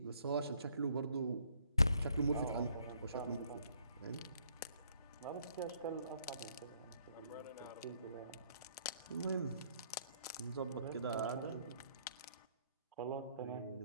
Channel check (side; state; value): both; inverted; correlation -0.67